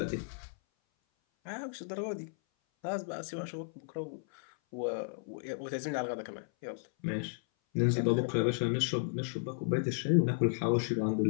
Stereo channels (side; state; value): right; silent; 55 dB below the other